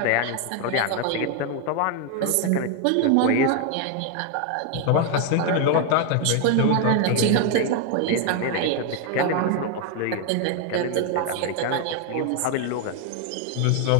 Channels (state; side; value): different; both; correlation 0.01